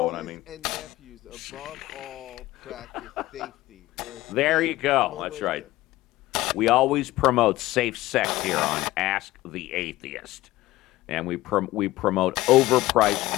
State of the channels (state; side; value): quieter; right; 17.3 dB